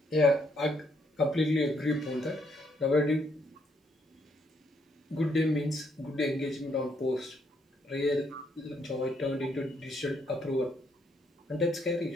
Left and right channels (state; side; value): normal; both; correlation 0.73